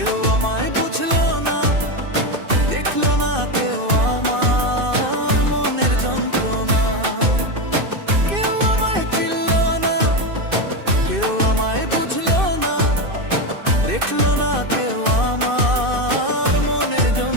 আমায় বুঝলো না, দেখলো না কেউ আমার মনের যন্ত্রণা। কেউ আমায় চিনলো না, কেউ আমায় বুঝলো না, দেখলো না কেউ আমার মনের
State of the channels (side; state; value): left; late; 2.6 ms